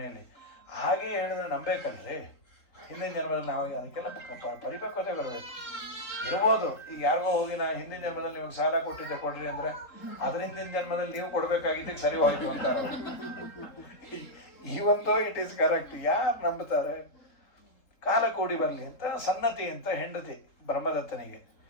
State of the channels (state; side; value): late; right; 3.7 ms